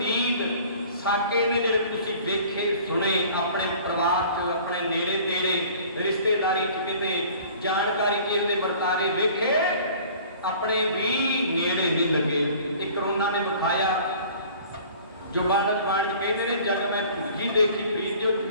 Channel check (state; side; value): inverted; both; correlation -0.48